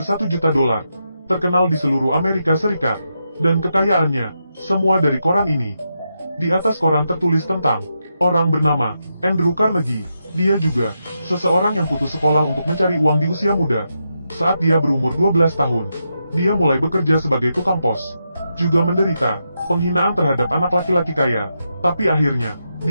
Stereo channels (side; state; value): both; inverted; correlation -0.85